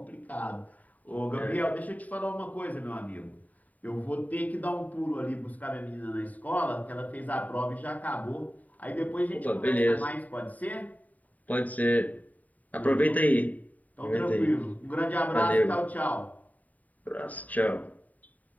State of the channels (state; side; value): late; right; 0.074 ms